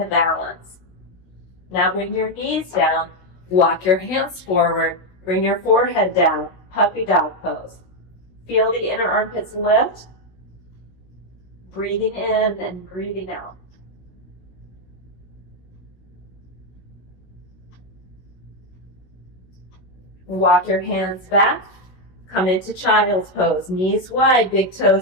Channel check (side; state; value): right; late; 16 ms